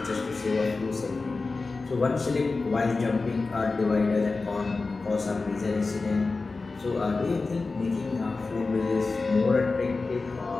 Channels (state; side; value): quieter; right; 3.8 dB